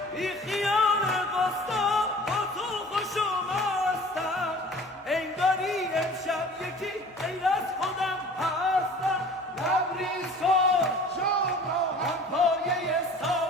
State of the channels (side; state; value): both; normal; correlation 0.45